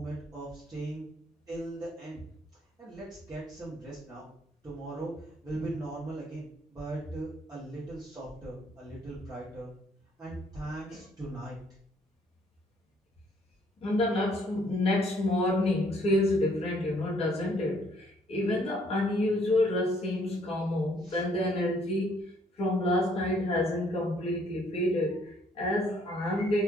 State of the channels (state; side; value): normal; both; correlation 0.65